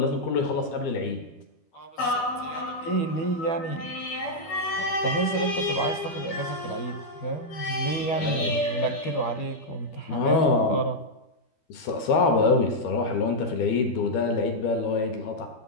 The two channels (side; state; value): right; late; 12 ms